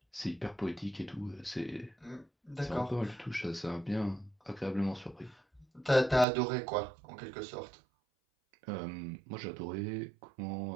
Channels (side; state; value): left; drops out; at 6.2 s